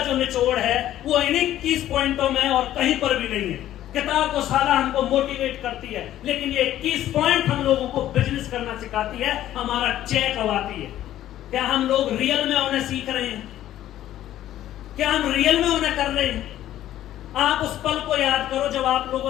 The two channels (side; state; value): right; quieter; 12.8 dB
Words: निचोड़ है वो इन 21 पॉइंटों में और कहीं पर भी नहीं है। किताब तो सारा हमको मोटिवेट करती है, लेकिन ये 21 पॉइंट हम लोगों को बिजनेस करना सिखाती है, हमारा चेक अवाती है। क्या हम लोग रियल में उन्हें सीख रहे हैं? क्या हम रियल में उन्हें कर रहे हैं? आप उस पल को याद करो जब आप